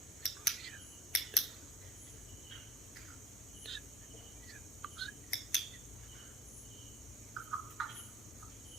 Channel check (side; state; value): both; normal; correlation 0.50